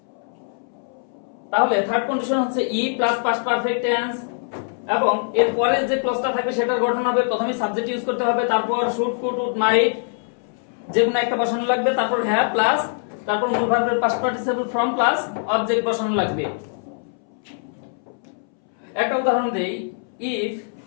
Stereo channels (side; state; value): right; silent; 64 dB below the other